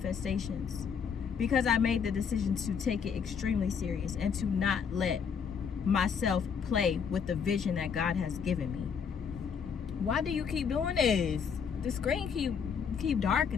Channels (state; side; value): quieter; right; 6.7 dB